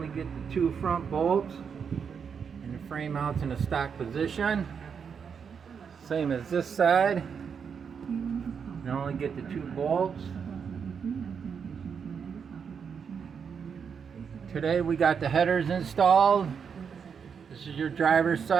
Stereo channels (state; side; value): quieter; left; 6.6 dB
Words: get the two front bolts. And the frame mounts in a stock position. Same as this side. You can only get the two bolts. Today we got the headers installed. This is your driver's